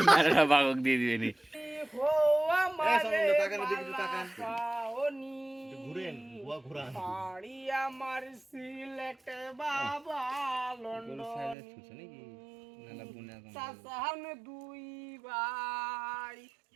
মারাটা বাগক দিয়ে দিবে নি। হো আমারে তাকান, এদিকে একটু তাকান। পাওনি, ঘুরেন, বুয়া ঘুরান। বাড়ি আমার সিলেটে বাবা লন্ডন, সাসাহান দুই ভাই,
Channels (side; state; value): left; drops out; at 11.6 s